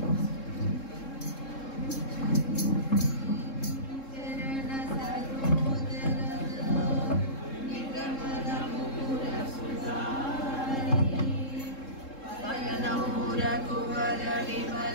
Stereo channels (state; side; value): late; right; 3.7 ms